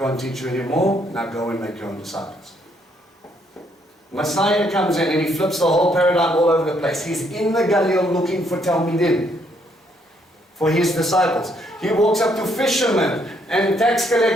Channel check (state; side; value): normal; both; correlation 0.71